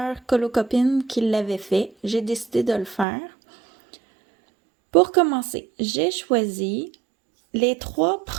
colocopines qui l'avaient fait. J'ai décidé de le faire. Pour commencer, j'ai choisi les 3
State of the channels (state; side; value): drops out; left; at 3.1 s